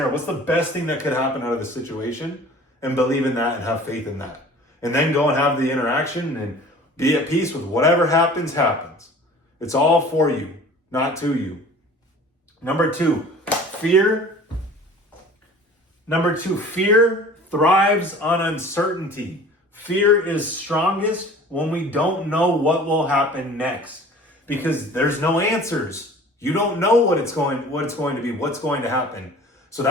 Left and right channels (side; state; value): both; normal; correlation 0.45